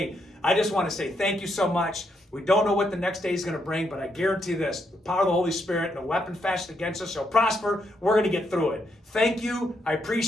I just want to say thank you so much. We don't know what the next day is going to bring, but I guarantee this. The power of the Holy Spirit, no weapon fashioned against us shall prosper. We're going to get through it. Thank you. I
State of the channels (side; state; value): both; normal; correlation 0.78